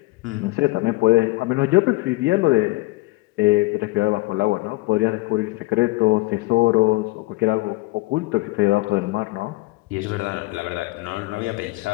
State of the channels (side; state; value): right; quieter; 22.0 dB